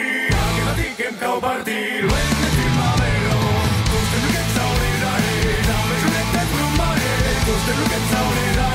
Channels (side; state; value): both; identical; correlation 1.00